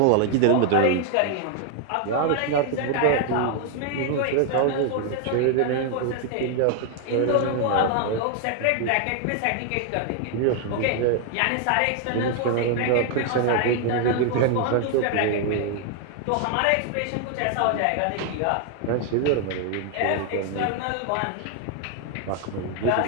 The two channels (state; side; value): different; both; correlation 0.00